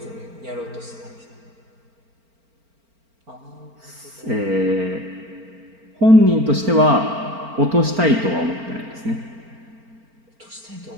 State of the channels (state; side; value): late; left; 4.4 ms